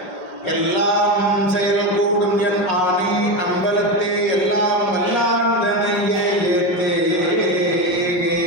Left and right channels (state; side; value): late; right; 5.5 ms